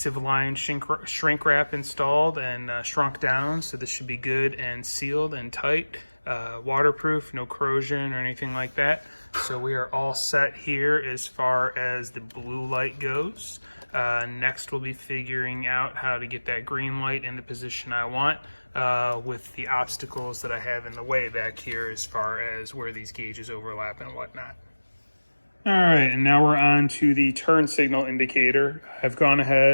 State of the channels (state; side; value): inverted; both; correlation -1.00